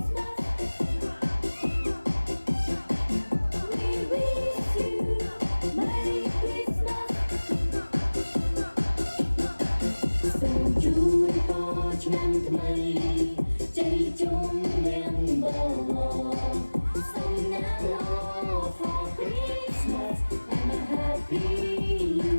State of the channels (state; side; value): inverted; both; correlation -1.00